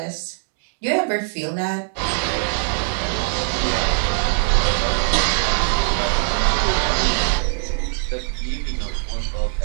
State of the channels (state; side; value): silent; left; digital silence